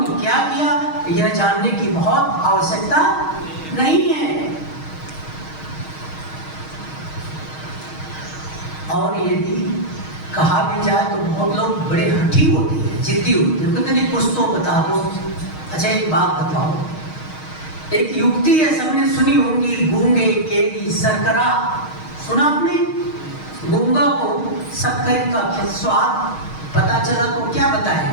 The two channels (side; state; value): right; late; 6.4 ms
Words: क्या किया यह जानने की बहुत आवश्यकता नहीं है। और यदि कहा भी जाए तो बहुत लोग बड़े हठी होते हैं, जिद्दी होते हैं, कहते नहीं कुछ तो बता दो। अच्छा एक बात बताओ, एक युक्ति है सबने सुनी होंगी, गूंगे केरी शर्करा। सुना आपने? गूंगा को शक्कर का स्वाद पता चला तो क्या